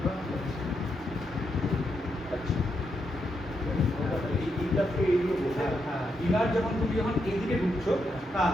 ইনার যখন তুমি যখন এইদিকে ঢুকছো, হ্যাঁ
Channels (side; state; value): both; normal; correlation 0.82